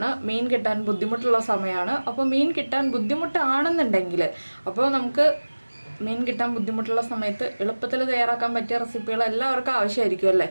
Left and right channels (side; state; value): both; inverted; correlation -1.00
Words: മീൻ കിട്ടാൻ ബുദ്ധിമുട്ടുള്ള സമയമാണ്. അപ്പോൾ മീൻ കിട്ടാൻ ബുദ്ധിമുട്ടാണെന്നുണ്ടെങ്കിൽ അപ്പോൾ നമുക്ക് മീൻ കിട്ടാൻ ബുദ്ധിമുട്ടുള്ള സമയത്ത് എളുപ്പത്തിൽ തയ്യാറാക്കാൻ പറ്റിയ റെസിപ്പികൾ എല്ലാവർക്കും ആവശ്യമായിരിക്കും അല്ലേ?